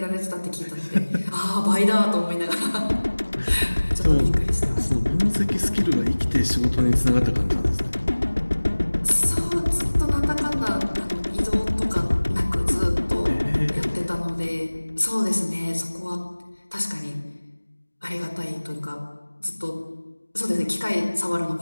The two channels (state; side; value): inverted; both; correlation -1.00